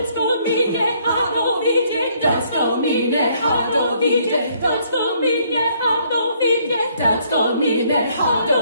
go me ne hado vide, don't go me ne hado vide, don't go me ne hado vide, don't go me ne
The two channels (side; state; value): both; inverted; correlation -0.66